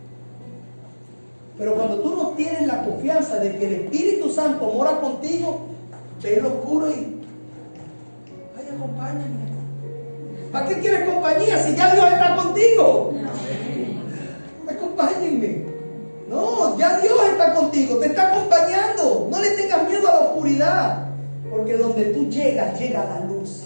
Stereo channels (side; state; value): both; inverted; correlation -1.00